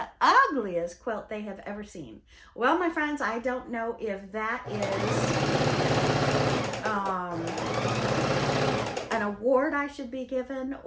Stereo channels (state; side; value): identical; both; correlation 1.00